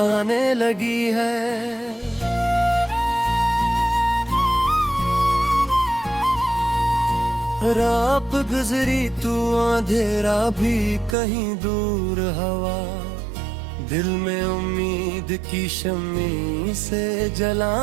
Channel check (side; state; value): left; drops out; at 11.2 s